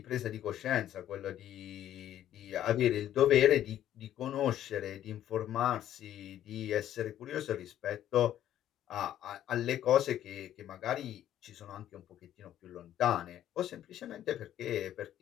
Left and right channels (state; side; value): quieter; right; 11.7 dB